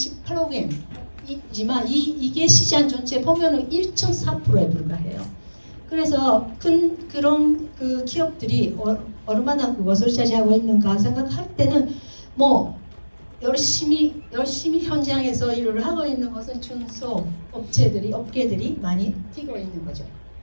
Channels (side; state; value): both; inverted; correlation -1.00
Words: 엔이지만 이게 시장 전체 보면은 1.4%에 불과해요. 그래서 그런 그 기업들이 얼마나 그것을 차지하고 있는가 생각할 때는 뭐 열심히 현장에서 일을 하고 있는 것은 중소 업계들이 많이 뛰고 있는 거죠.